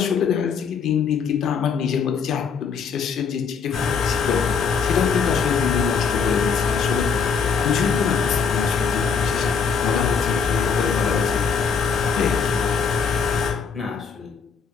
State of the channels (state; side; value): quieter; right; 6.0 dB